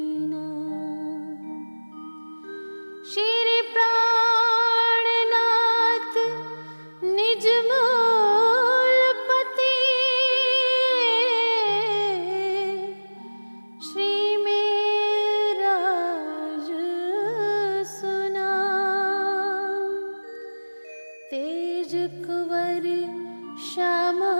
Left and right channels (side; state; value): both; inverted; correlation -1.00